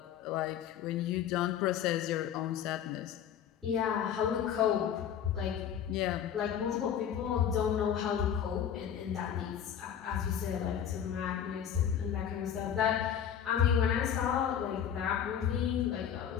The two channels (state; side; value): quieter; right; 9.1 dB